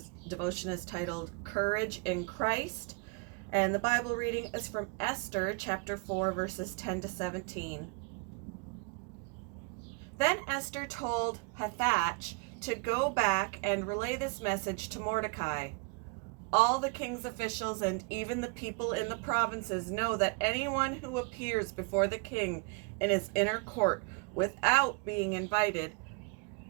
devotion is titled Courage in Christ, and the Bible reading is from Esther chapter 4, verses 10 to 17. Then Esther told Hathach to go back and relay this message to Mordecai. All the king's officials and even the people in the provinces know that anyone who appears before the king in his inner court without being invited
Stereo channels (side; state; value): left; quieter; 31.5 dB